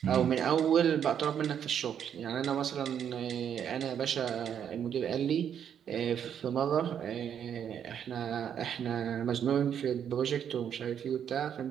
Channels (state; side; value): quieter; left; 8.7 dB